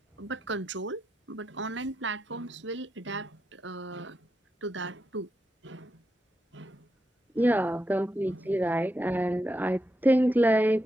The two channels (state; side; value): normal; both; correlation 0.85